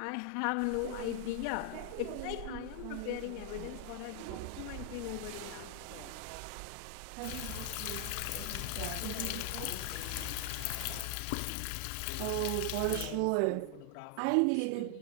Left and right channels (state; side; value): different; both; correlation 0.00